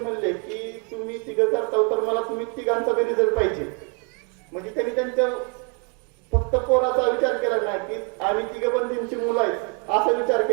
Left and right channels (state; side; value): quieter; left; 36.6 dB